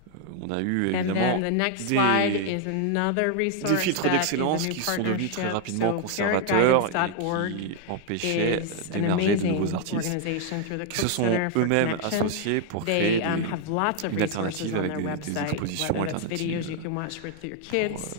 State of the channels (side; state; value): both; different; correlation 0.00